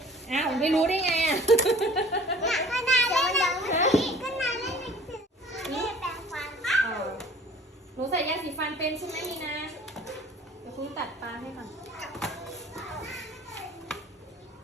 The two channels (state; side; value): normal; both; correlation 0.49